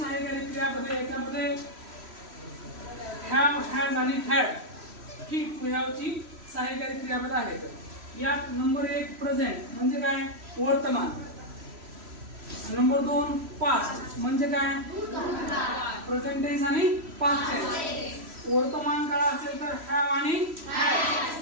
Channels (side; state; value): left; late; 3.1 ms